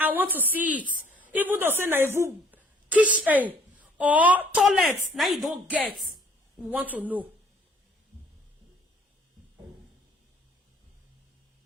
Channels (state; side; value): normal; both; correlation 0.59